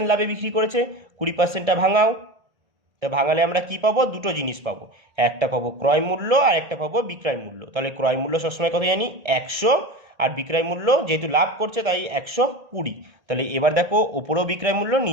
লাভে বিক্রি করেছে, 20%টা ভাঙাও। তা ভাঙালে আমরা কি পাবো? দুটো জিনিস পাবো, একটা পাবো ক্রয় মূল্য আর একটা পাবো বিক্রয় মূল্য। তাহলে ক্রয় মূল্য সবসময় কত জানি? 100, আর বিক্রয় মূল্য যেহেতু লাভ করছে তাই 120। তাহলে এবার দেখো ওপরেও বিক্রয় মূল্য,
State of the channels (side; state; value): left; late; 1.6 ms